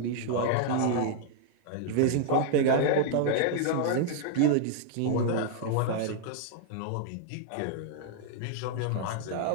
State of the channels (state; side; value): different; both; correlation -0.01